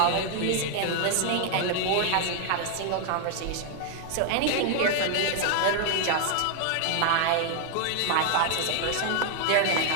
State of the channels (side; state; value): both; different; correlation 0.00